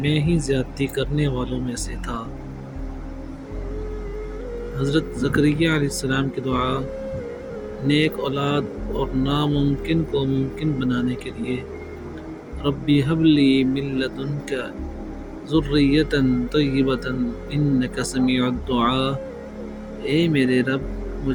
میں ہی زیادتی کرنے والوں میں سے تھا۔ حضرت زکریا علیہ السلام کی دعا نیک اولاد اور ناممکن کو ممکن بنانے کے لیے، ربی حب لی من لدنک ذریۃ طیبۃ انک سمیع الدعاء، اے میرے رب،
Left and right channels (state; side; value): identical; both; correlation 1.00